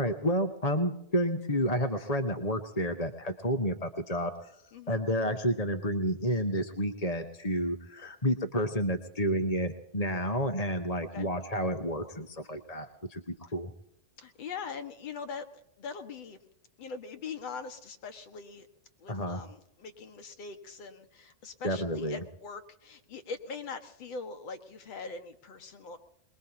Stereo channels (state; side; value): late; right; 1.8 ms